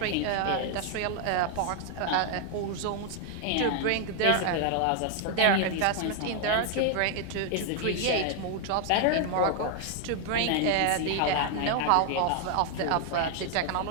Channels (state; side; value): different; both; correlation 0.00